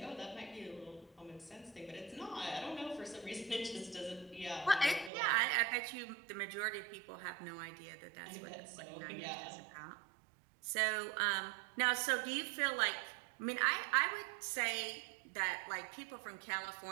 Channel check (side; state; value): left; drops out; at 5.1 s